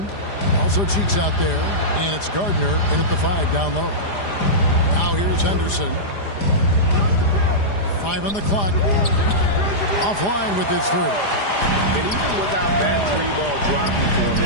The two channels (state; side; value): late; right; 4.9 ms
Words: Also Cheeks out there. And it's Gardner in at the 5 down low. Now here's Henderson. 5 on the clock. Offline with his 3. And even without that 3-ball dropping for him, the